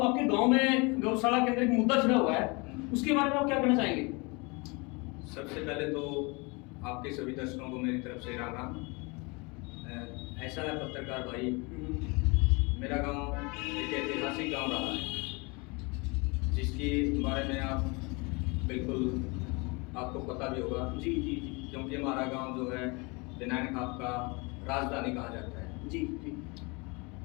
गांव में गौशाला के अंदर एक मुद्दा छिड़ा हुआ है, उसके बारे में आप क्या कहना चाहेंगे? सबसे पहले तो आपके सभी दर्शकों को मेरी तरफ से राम राम। ऐसा है पत्रकार भाई, मेरा गांव एक ऐतिहासिक गांव रहा है जिसके बारे में आप बिल्कुल आपको पता भी होगा। जी जी जी। क्योंकि हमारा गांव जो है दिनायन खाप का राजधानी कहा जाता है। जी जी।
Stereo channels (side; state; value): right; quieter; 28.3 dB